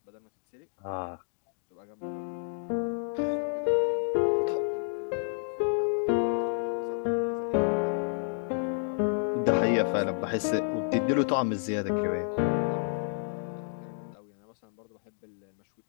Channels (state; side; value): silent; right; digital silence